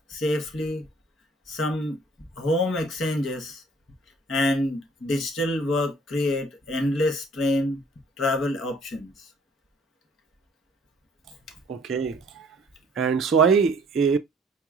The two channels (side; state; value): both; normal; correlation 0.57